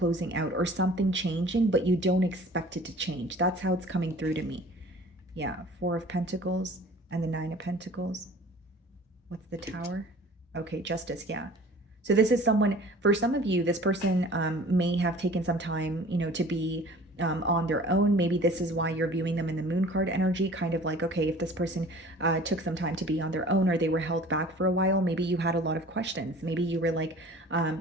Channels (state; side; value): normal; both; correlation 0.46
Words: out, or something changing, but you don't expect it to change. That's how it's coming through to me. Yeah, Four of Pentacles and the Nine of Pentacles. What's the Tower? Okay, Justice, yeah. So this is someone, for some of you, this person may have taken some time, to be on their own. Maybe this is why you're viewing them in the Moon card energy, kind of like, okay, if this person took some time to be on their own, or they were held back for a while, maybe you had a lot of questions. Maybe you were like,